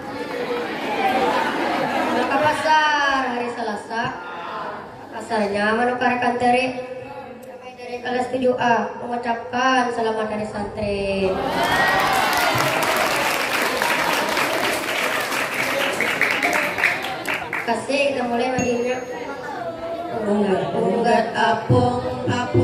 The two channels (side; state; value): both; identical; correlation 1.00